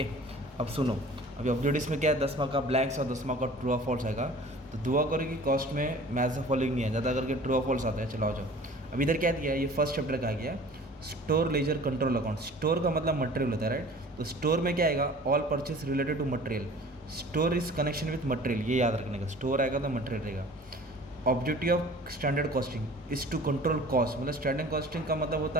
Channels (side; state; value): both; normal; correlation 0.45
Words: अब सुनो, अभी ऑब्जेक्टिव्स में क्या है, 10 मार्क का ब्लैंक्स और 10 मार्क का ट्रू और फॉल्स आएगा। तो दुआ करो कि कॉस्ट में मैथ्स फॉलोइंग नहीं है, ज़्यादा करके ट्रू और फॉल्स आता है। चलो आ जाओ। अब इधर क्या दिया है, ये फर्स्ट चैप्टर का आ गया, store ledger control account. Store का मतलब मटेरियल होता है, राइट। तो स्टोर में क्या आएगा, all purchase related to material. Store is connection with material, ये याद रखने का। स्टोर आएगा तो मटेरियल रहेगा। Objective of standard costing is to control cost. मतलब स्टैंडर्ड कॉस्टिंग का मतलब होता